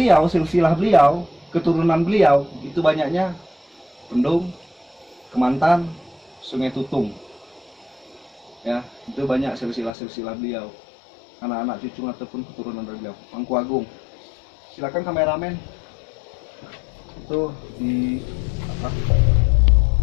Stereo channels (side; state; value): right; drops out; at 9.9 s